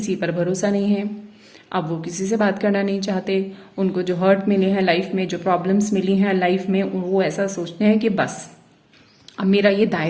पर भरोसा नहीं है, अब वो किसी से बात करना नहीं चाहते। उनको जो हर्ट मिले हैं लाइफ में, जो प्रॉब्लम्स मिली हैं लाइफ में, वो ऐसा सोचते हैं कि बस अब मेरा ये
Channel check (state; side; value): identical; both; correlation 1.00